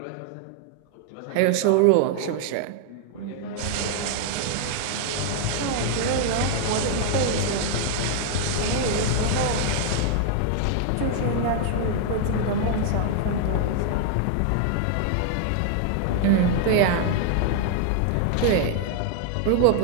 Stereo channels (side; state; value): both; different; correlation 0.00